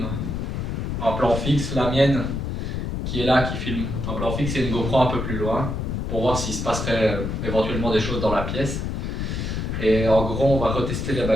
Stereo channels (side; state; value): left; noise; rumble, 2 dB below the sound